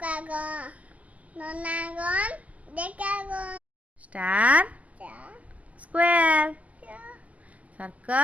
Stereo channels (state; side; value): late; left; 0.067 ms